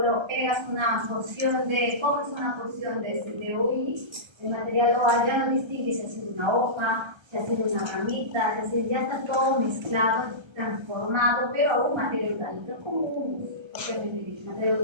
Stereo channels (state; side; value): late; left; 1.3 ms